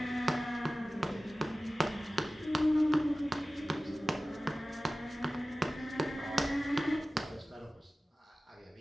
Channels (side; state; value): both; normal; correlation 0.96